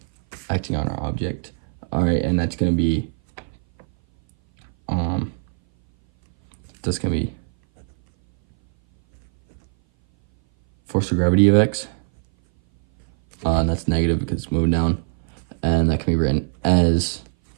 our object. All right, and that's gonna be force of gravity of x, and that's negative because it's moving down, and that can be written as,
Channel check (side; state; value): left; silent; 59 dB below the other